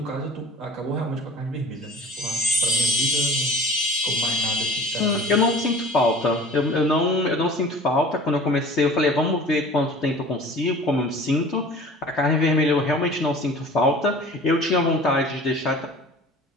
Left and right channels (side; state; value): both; normal; correlation 0.43